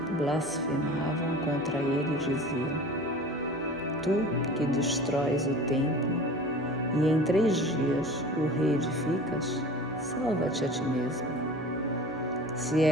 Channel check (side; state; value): both; normal; correlation 0.40